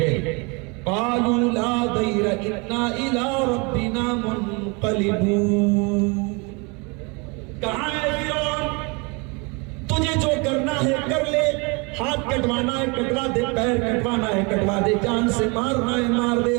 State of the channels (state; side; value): quieter; left; 29.9 dB